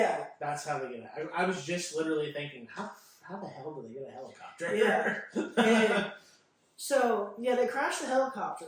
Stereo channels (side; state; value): both; identical; correlation 1.00